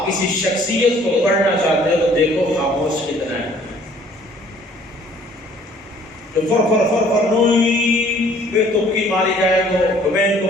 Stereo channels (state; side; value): normal; both; correlation 0.57